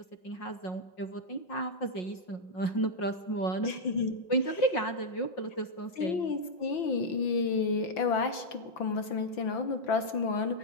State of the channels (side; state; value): right; late; 6.0 ms